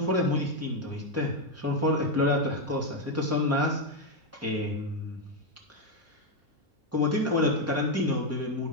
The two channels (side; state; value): both; normal; correlation 0.04